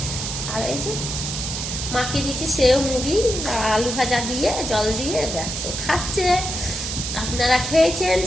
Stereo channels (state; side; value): noise; right; hiss, 4 dB below the sound